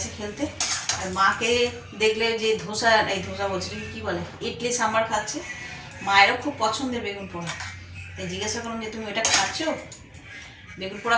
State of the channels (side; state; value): both; identical; correlation 1.00